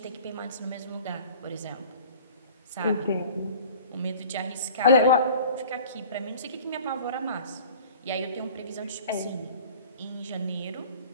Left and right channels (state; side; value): inverted; both; correlation -0.45